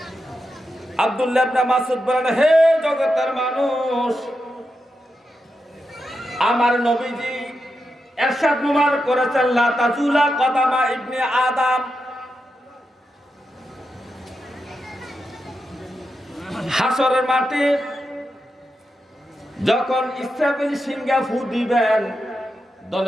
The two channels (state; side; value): normal; both; correlation 0.88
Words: আব্দুল্লাহ ইবনে মাসউদ বলেন, হে জগতের মানুষ, আমার নবীজি ইরশাদ মুবারক করেছেন, লা তাজুলা কদামা ইবনে আদম, হাসরের মাঠে যখন ইসরাফিল সিংহা ফু দিবেন,